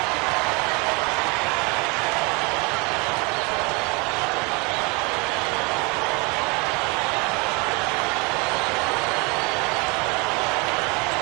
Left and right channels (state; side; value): quieter; left; 29.0 dB